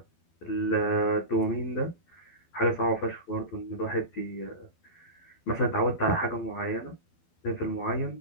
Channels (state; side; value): late; right; 12 ms